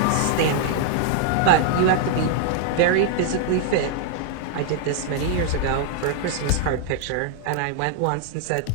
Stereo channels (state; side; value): different; both; correlation 0.00